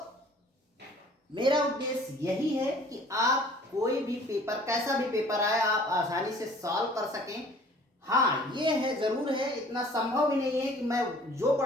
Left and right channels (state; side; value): normal; both; correlation 0.52